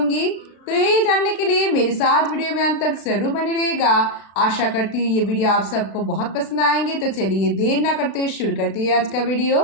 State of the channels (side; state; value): right; late; 36 ms